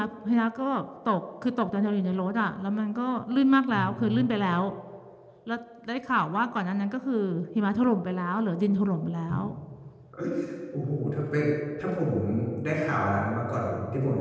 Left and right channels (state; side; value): identical; both; correlation 1.00